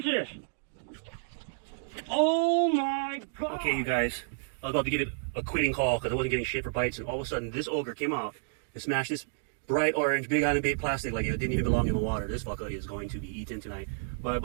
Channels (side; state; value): left; silent; digital silence